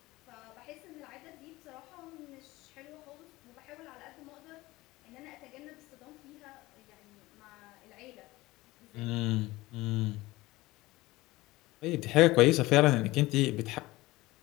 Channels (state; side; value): quieter; right; 19.6 dB